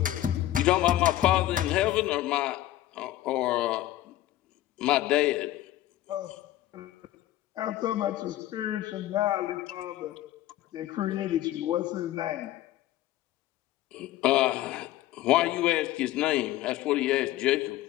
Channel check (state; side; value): quieter; right; 14.5 dB